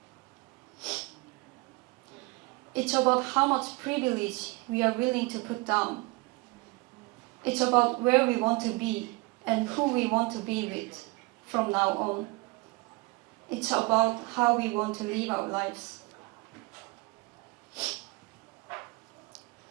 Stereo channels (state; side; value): quieter; left; 25.7 dB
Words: It's about how much privilege we are willing to put down. It's about where we want to be and who we want to be with from now on. It's about how we want to live our lives.